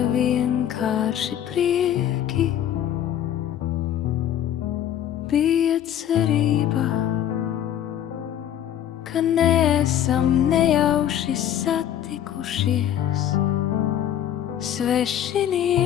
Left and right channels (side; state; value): right; quieter; 10.6 dB